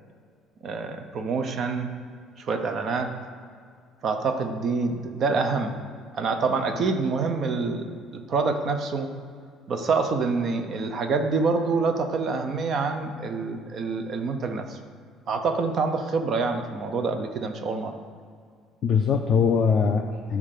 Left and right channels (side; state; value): both; normal; correlation 0.58